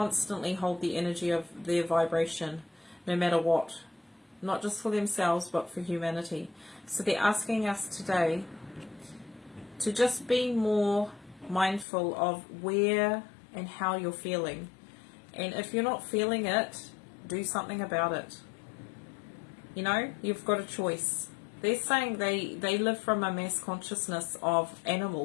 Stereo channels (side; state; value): right; drops out; at 11.9 s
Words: hold the energy of their vibration, no matter what. Not just for themselves, but for humanity. So they're asking us today to just be more mindful of where and how you're feeling. And if you're not feeling it, do something about it. You know, you've got a choice. They're saying they live from a mass consciousness of